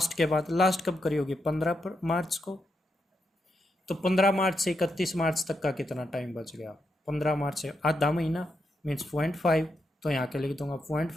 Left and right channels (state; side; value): normal; both; correlation 0.83